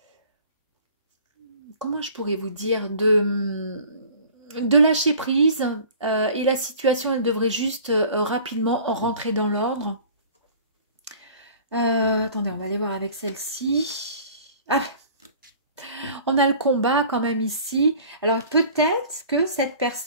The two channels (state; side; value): inverted; both; correlation -0.47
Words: comment je pourrais vous dire, de lâcher prise et la situation, elle devrait juste rapidement rentrer dans l'ordre. Attendez, on va aller voir avec celle-ci. Ah, on a le combat quand même ici. Alors peut-être que cette